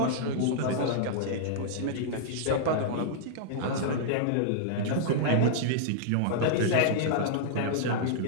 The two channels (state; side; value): different; both; correlation -0.02